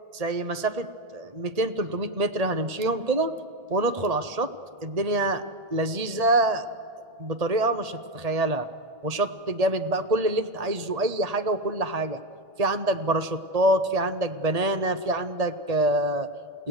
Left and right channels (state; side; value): late; left; 1.8 ms